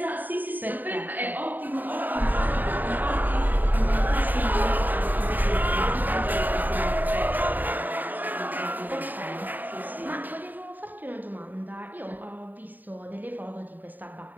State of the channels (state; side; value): late; left; 0.087 ms